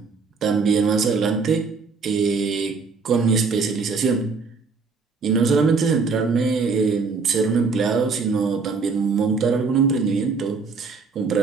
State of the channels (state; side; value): quieter; left; 4.7 dB